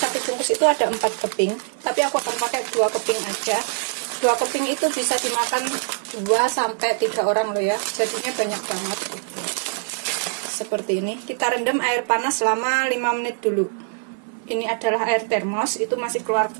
bungkus itu ada 4 keping, tapi aku akan pakai 2 keping aja. 2 keping itu bisa dimakan 2-3 orang loh ya, jadinya banyak banget. Seperti ini, kita rendam air panas selama 5 menit dulu. Ini adalah air termos, itu masih keluar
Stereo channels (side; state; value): left; silent; digital silence